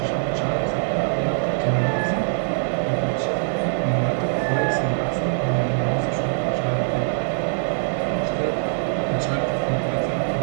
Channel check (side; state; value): left; silent; 60 dB below the other